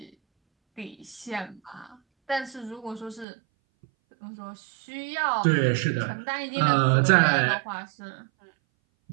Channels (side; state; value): left; drops out; at 3.2 s